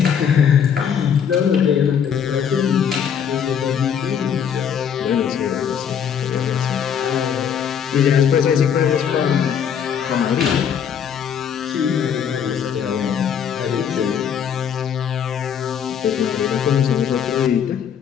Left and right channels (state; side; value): quieter; right; 8.0 dB